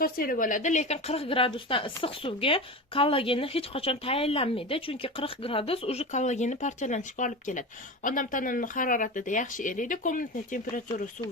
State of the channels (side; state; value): both; normal; correlation 0.26